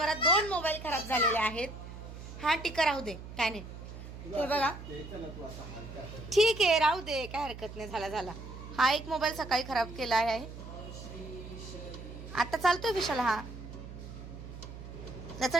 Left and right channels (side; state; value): right; noise; hum, 12 dB below the sound